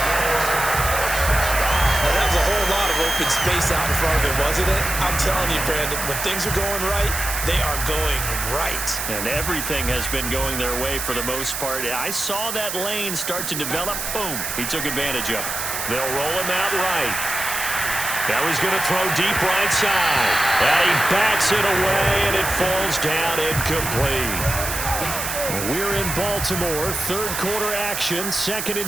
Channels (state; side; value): noise; right; hiss, 4 dB below the sound